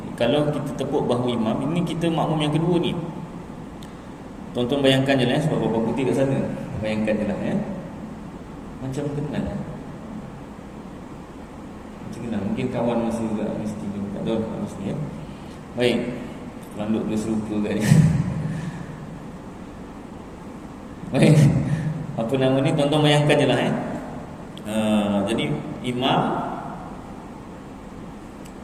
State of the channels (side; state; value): both; identical; correlation 1.00